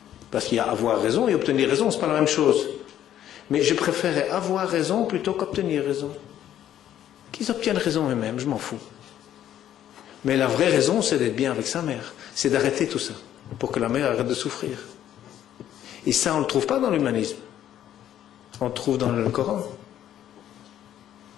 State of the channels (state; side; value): quieter; right; 11.3 dB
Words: Parce qu'il y a avoir raison et obtenir raison, ce n'est pas la même chose. Mais je préférais avoir raison plutôt qu'obtenir raison. Qu'ils obtiennent raison eux-mêmes, je m'en fous. Mais la vraie raison, c'est d'être bien avec sa mère, c'est d'arrêter tout ça, pour que la mère arrête de souffrir. Et ça, on ne le trouve pas dans l'humanisme. On le trouve dans le Coran.